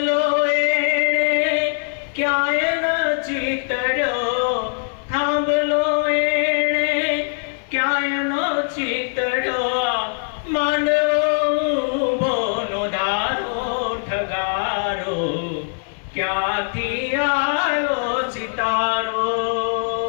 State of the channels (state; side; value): silent; right; digital silence